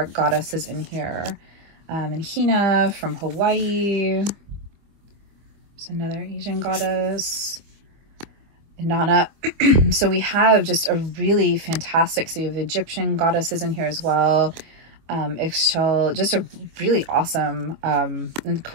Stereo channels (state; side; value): late; left; 25 ms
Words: goddesses in here. And Hina from Hawaii. There's another Asian goddess. Inanna. So we have just a really fantastic, so you have Egyptian goddesses in here as well. Ixchel, just a really awesome, and of